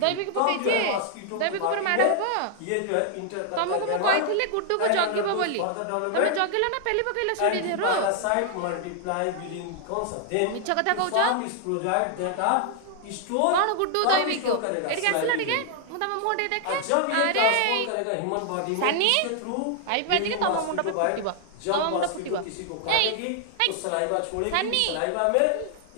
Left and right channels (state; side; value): different; both; correlation 0.00